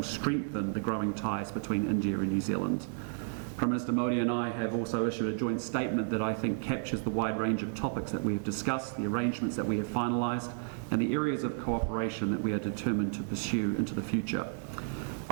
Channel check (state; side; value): silent; left; 56 dB below the other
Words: strengthen the growing ties between India and New Zealand. Prime Minister Modi and I have also issued a joint statement that I think captures the wide range of topics that we have discussed, the arrangements that we have finalised, and the areas of cooperation that we are determined to pursue into the future.